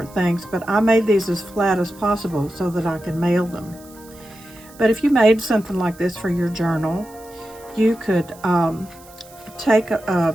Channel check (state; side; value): noise; right; hiss, 23 dB below the sound